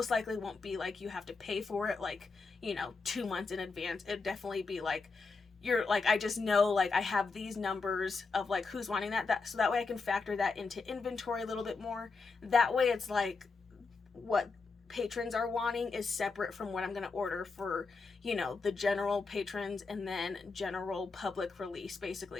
likely won't be like you have to pay for it like, you know, 2 months in advance. It'd definitely be like you're like, I just know like I have these numbers of like who's wanting that so that way I can factor that into inventory a little bit more. That way it's like what patrons are wanting is separate from what I'm going to order for, you know, the general patrons and then general public release,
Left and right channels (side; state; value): right; quieter; 4.3 dB